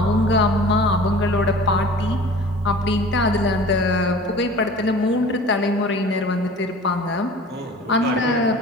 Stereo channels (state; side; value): normal; both; correlation 0.43